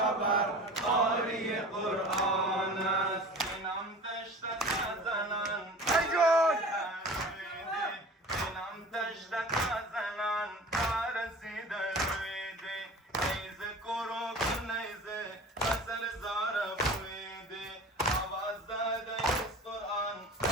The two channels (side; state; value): both; normal; correlation 0.39